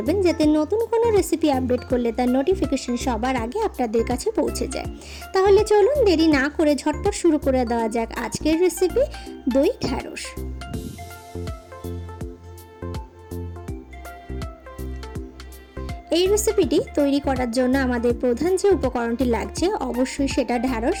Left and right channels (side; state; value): both; identical; correlation 1.00